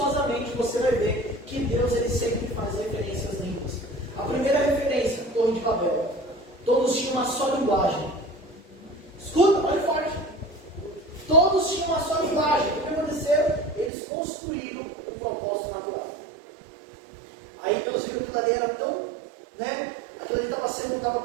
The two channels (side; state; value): left; drops out; at 13.9 s